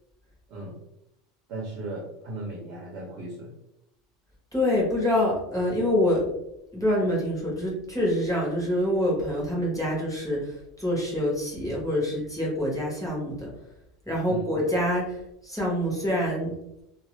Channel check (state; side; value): normal; both; correlation 0.43